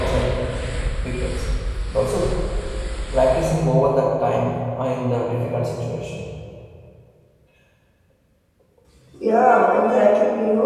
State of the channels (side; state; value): both; identical; correlation 1.00